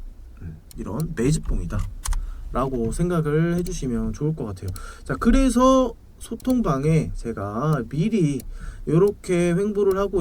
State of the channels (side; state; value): both; identical; correlation 1.00